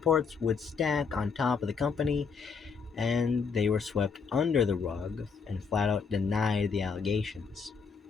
would stack on top of the company, and they were swept under the rug and flat out denied the allegations.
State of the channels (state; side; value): quieter; right; 5.5 dB